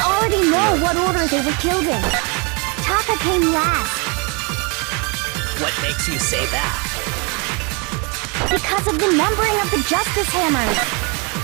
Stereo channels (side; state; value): left; quieter; 31.9 dB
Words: know what order they were killed in. Taka came last what makes you say that? because of the numbering of the Justice Hammers.